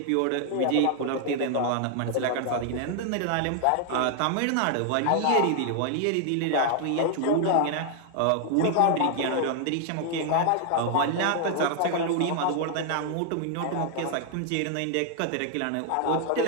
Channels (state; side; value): different; both; correlation 0.00